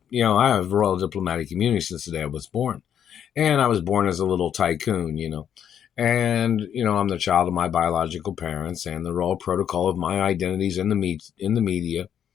I have royal diplomatic immunity since the day I was born. And I was born as a little tycoon. And, I'm the child of my biological parents, and the royal protocol of my identities in the media.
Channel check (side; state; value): right; quieter; 9.1 dB